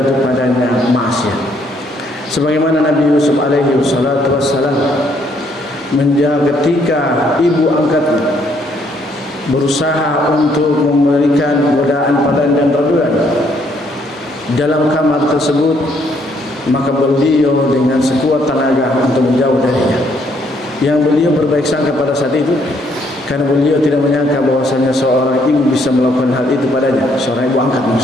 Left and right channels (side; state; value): both; normal; correlation 0.69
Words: padanya maksiat. Sebagaimana Nabi Yusuf alaihi wassalatu wassalam ketika ibu angkatnya berusaha untuk memberikan godaan padanya dan raduan dalam kamar tersebut, maka beliau dengan sekuat tenaga untuk menjauh darinya. Yang beliau berbaik sangka pada saat itu, karena beliau tidak menyangka bahwasanya seorang ibu bisa melakukan hal itu padanya, seorang ibu angkat